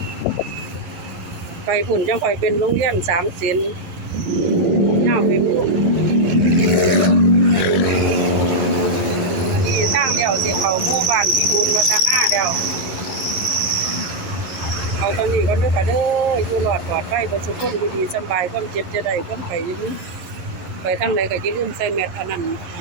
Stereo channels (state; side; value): late; left; 11 ms